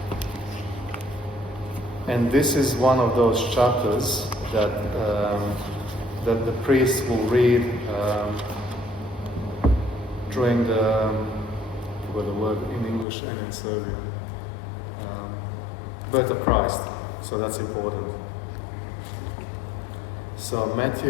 And this is one of those chapters that the priest will read during the word in English and in Serbian, birth of Christ. So that's important. So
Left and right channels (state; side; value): drops out; right; at 13.1 s